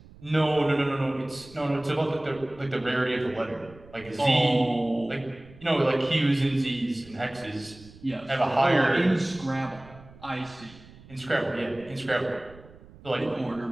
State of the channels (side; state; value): right; noise; rumble, 22 dB below the sound